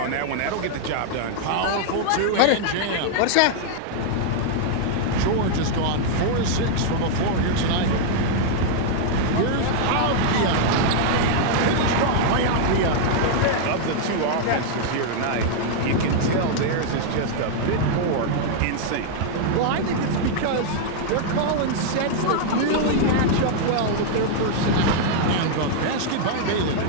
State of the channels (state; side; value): different; both; correlation -0.01